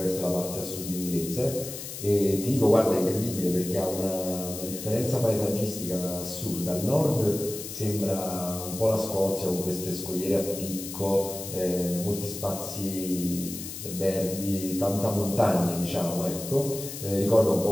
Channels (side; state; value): left; noise; hiss, 9 dB below the sound